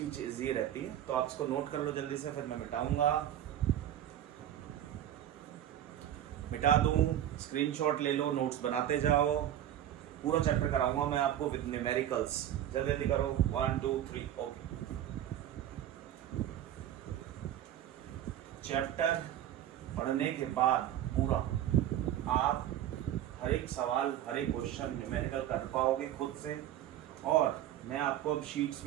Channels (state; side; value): quieter; left; 11.6 dB